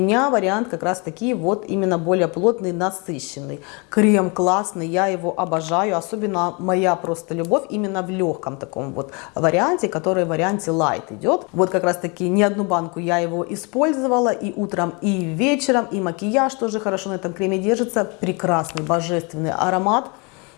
вариант как раз таки вот именно более плотный, насыщенный. Крем классный, я его обожаю, особенно моя просто любовь именно в легком таком вот варианте, который в варианте light идет. Вот как раз таки не одну банку я его использовала и утром, и вечером, и макияж тоже хорошо на этом креме держится. Прекрасный, божественный аромат.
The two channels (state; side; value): quieter; right; 30.9 dB